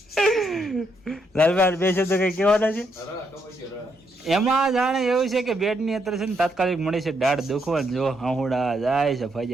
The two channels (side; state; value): both; normal; correlation 0.77